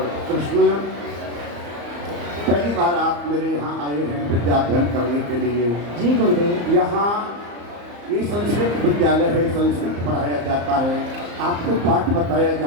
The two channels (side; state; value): left; late; 34 ms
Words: कृष्ण, पहली बार आप मेरे यहाँ आए हैं विद्या अध्ययन करने के लिए। जी गुरुदेव। यहाँ ये संस्कृत विद्यालय है, संस्कृत पढ़ाया जाता है, आपको पाठ बताया